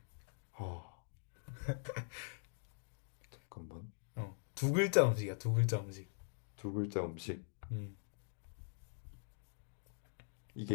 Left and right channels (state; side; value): silent; right; digital silence